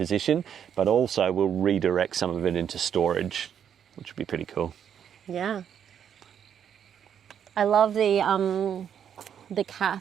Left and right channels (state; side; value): quieter; left; 8.7 dB